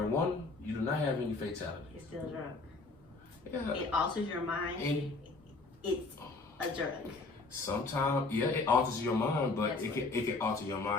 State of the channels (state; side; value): quieter; right; 3.6 dB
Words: you do not have any fatality. It's still a drug. Yeah. It alters your mind. And it's a drug. Sometimes, yeah, it alters your mind, but it can alter your